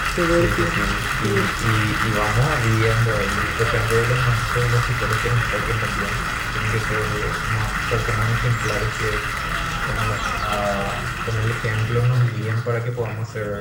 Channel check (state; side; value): identical; both; correlation 1.00